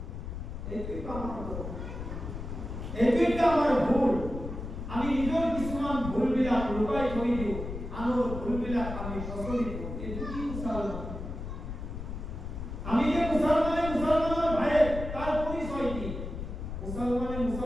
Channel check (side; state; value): left; noise; rumble, 7 dB below the sound